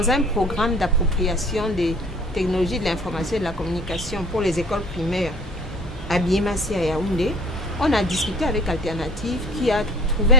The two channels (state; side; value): normal; both; correlation 0.49